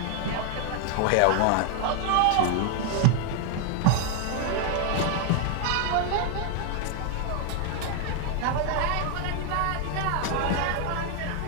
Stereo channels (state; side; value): different; both; correlation 0.00